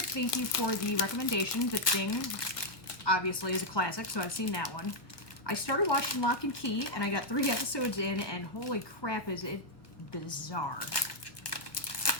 thank you for the recommendation. The Thing, obviously, is a classic, so I've seen that one. I started watching Lock and Key, and I got 3 episodes in, and holy crap, is it bizarre.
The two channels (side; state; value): right; late; 1.2 ms